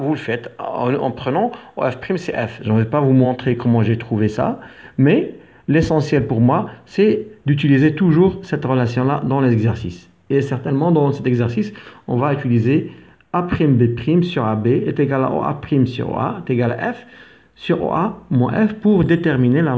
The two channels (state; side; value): identical; both; correlation 1.00